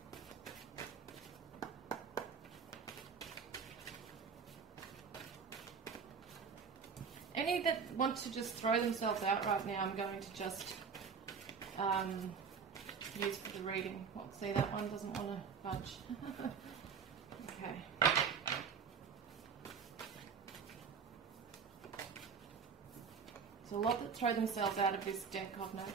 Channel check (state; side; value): quieter; left; 6.2 dB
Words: Any that want to just throw themselves out right now, I'm going to just use for the reading. Well, see, that one doesn't want to budge. Okay. There's a lot that throw themselves out of this deck, I've